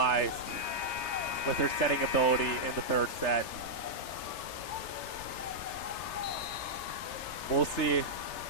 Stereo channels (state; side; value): late; right; 3.3 ms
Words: with her setting ability in the third set. We'll see